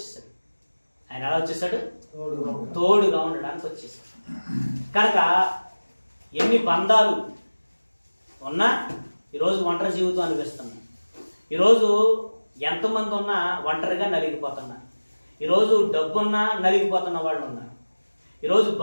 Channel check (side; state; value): both; inverted; correlation -1.00